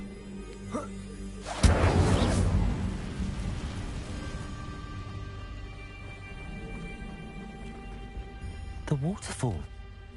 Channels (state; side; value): identical; both; correlation 1.00